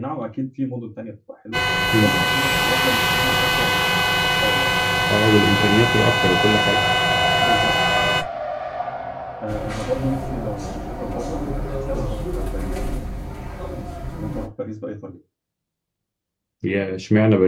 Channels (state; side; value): identical; both; correlation 1.00